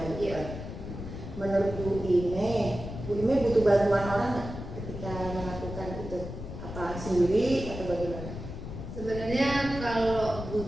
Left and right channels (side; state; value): left; noise; rumble, 9 dB below the sound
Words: gitu. Iya. Menurut Bu Ine butuh bantuan orang nggak ketika melakukan itu? Apa sendiri atau bagaimana? Sebenarnya kalau